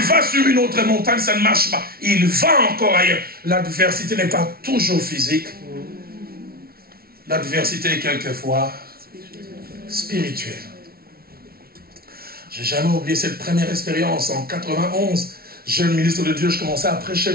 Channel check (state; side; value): late; left; 0.44 ms